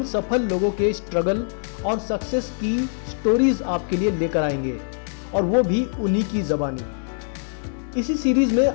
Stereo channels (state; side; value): silent; right; 63 dB below the other